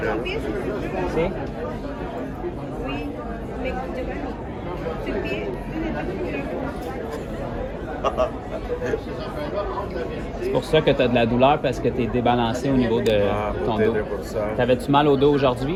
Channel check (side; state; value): both; identical; correlation 1.00